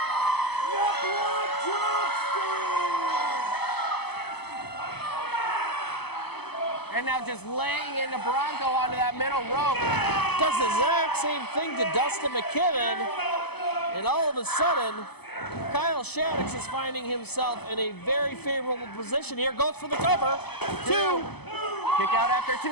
your blood drops down. And now just laying into Bronco onto that middle rope. Does the exact same thing to Dustin McKibben, and all of a sudden, Kyle Shaddix is finding himself in a very favorable position here. Goes for the cover. 2. Kick out after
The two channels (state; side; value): late; right; 0.98 ms